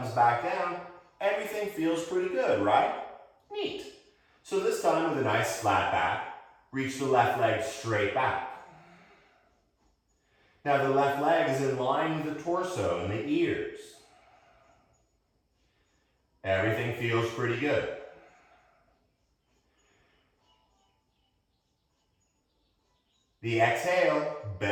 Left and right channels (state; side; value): identical; both; correlation 1.00